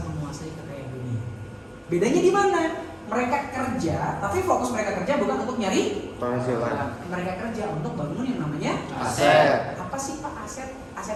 menguasai kekayaan dunia. Bedanya di mana? Mereka kerja, tapi fokus mereka kerja bukan untuk nyari Penghasilan. mereka kerja untuk bangun yang namanya Aset. Apa sih Pak aset?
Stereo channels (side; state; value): both; identical; correlation 1.00